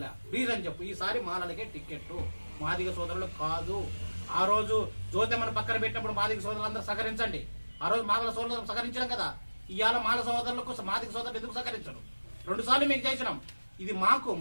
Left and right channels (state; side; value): inverted; both; correlation -1.00